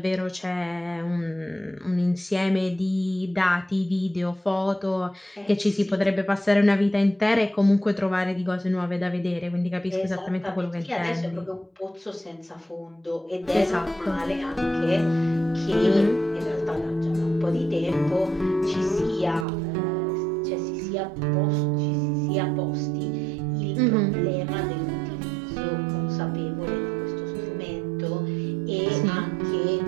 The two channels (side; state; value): left; drops out; at 19.5 s